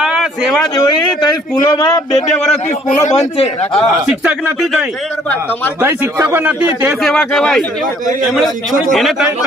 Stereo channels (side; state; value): both; normal; correlation 0.60